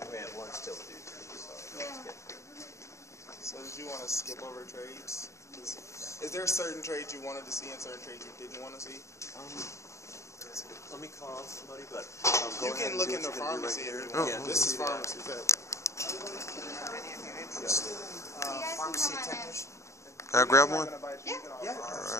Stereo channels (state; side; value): late; right; 0.14 ms